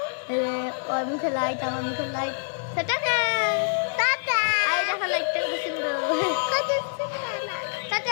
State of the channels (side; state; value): right; silent; 61 dB below the other